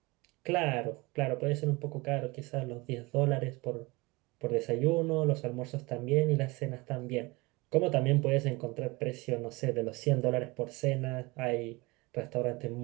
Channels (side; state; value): left; quieter; 24.0 dB